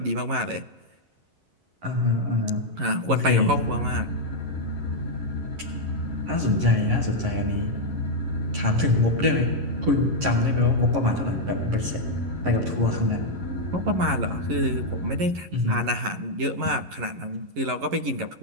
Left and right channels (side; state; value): left; late; 11 ms